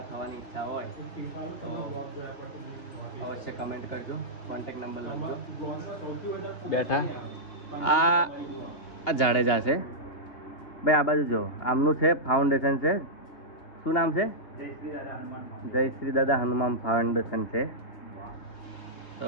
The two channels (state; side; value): late; right; 2.8 ms